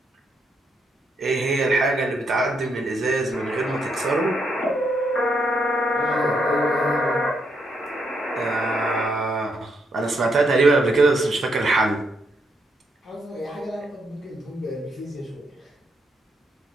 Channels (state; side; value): normal; both; correlation 0.77